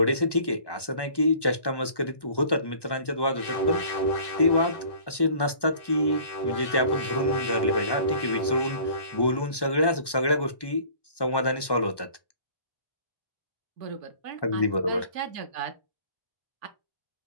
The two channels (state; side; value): late; right; 1.1 ms